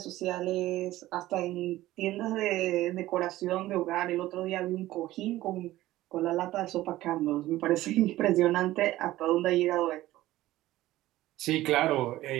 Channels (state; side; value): quieter; left; 16.0 dB